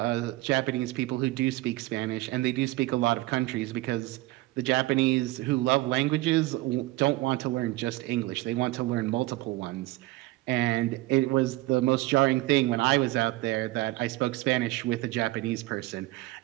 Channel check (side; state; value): left; quieter; 19.2 dB